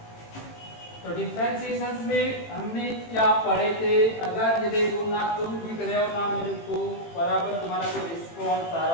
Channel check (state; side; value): late; right; 18 ms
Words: तो differentiation में हमने क्या पढ़े थे? अगर ये देखो ना तुम लिख रहे हो ना मेरे को बराबर तुम्हारा कोई रिस्पॉन्स आ